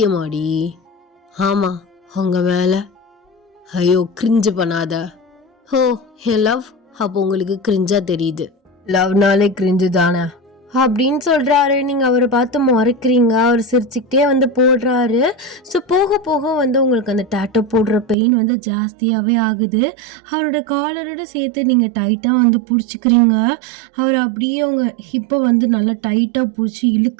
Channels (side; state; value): left; drops out; at 18.2 s